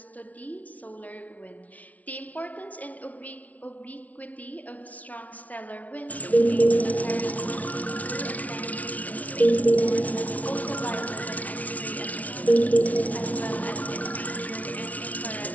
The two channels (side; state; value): right; late; 0.070 ms